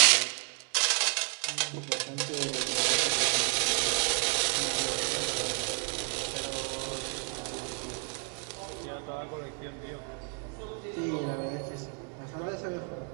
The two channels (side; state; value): left; quieter; 38.5 dB